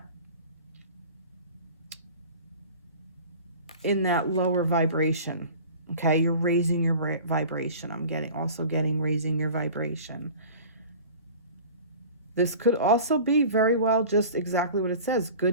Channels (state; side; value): inverted; both; correlation -0.40